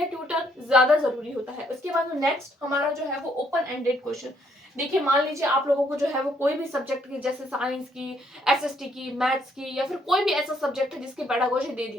ट्यूटर ज्यादा जरूरी होता है। उसके बाद नेक्स्ट हमारा जो है वो ओपन एंडेड क्वेश्चन। देखिए मान लीजिए आप लोगों को जो है वो कोई भी सब्जेक्ट की, जैसे साइंस की, एसएसटी की, मैथ्स की, या फिर कोई भी ऐसा सब्जेक्ट है जिसकी पेडागोजी दे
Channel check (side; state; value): both; normal; correlation 0.70